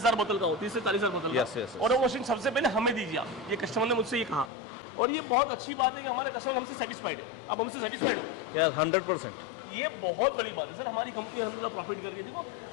बोतल का हो, 30 से 40,000 बोतल का। Yes, yes, yes. और वो मशीन सबसे पहले हमें दीजिए आप, ये कस्टमर ने मुझसे ये कहा। और ये बहुत अच्छी बात है कि हमारे कस्टमर हमसे सेटिस्फाइड है। आप हमसे सेटिस्फाइड हो? यार 100%। ये बहुत बड़ी बात है सर। हमारी कंपनी अल्हम्दुलिल्लाह प्रॉफिट कर रही है। देखो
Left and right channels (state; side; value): drops out; right; at 4.5 s